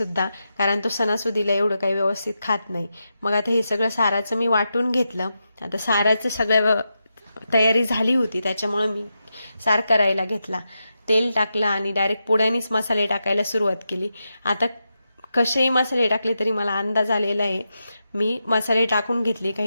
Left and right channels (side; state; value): both; inverted; correlation -0.88